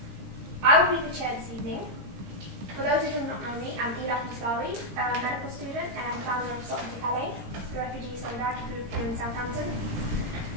I will be the chair this evening. For those who do not know me, I'm Ila Muslawi, a medical student and founder of Salt to Calais, the refugee solidarity group here in Southampton.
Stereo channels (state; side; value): late; left; 17 ms